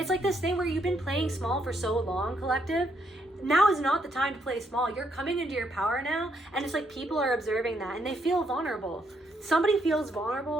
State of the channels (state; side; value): normal; both; correlation 0.75